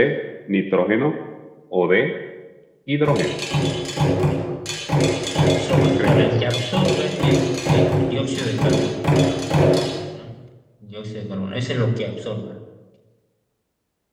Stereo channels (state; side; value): identical; both; correlation 1.00